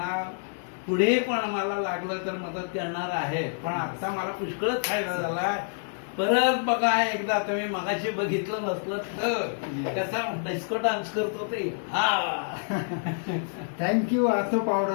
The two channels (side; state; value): right; silent; digital silence